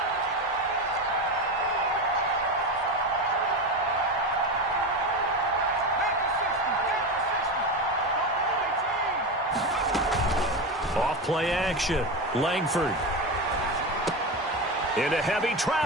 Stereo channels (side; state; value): both; normal; correlation 0.19